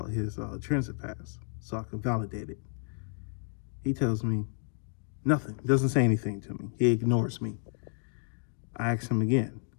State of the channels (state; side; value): silent; right; 57 dB below the other